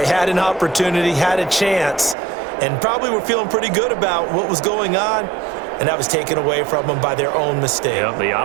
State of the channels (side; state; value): left; drops out; at 2.1 s